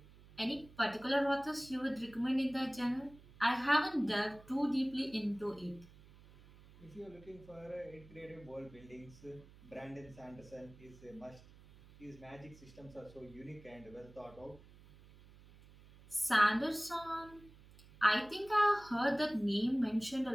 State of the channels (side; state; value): right; noise; hum, 22 dB below the sound